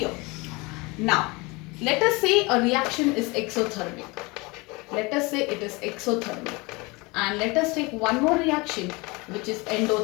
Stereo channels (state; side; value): quieter; right; 25.6 dB